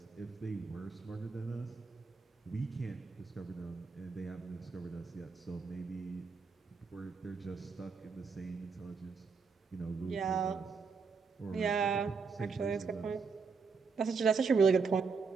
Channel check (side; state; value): left; quieter; 5.1 dB